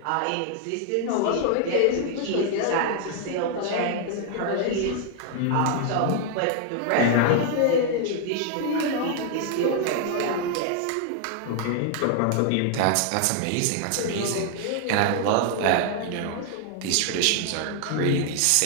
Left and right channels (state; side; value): different; both; correlation 0.00